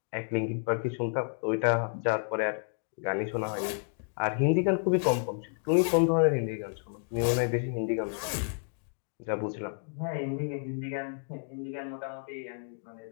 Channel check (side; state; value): right; silent; 57 dB below the other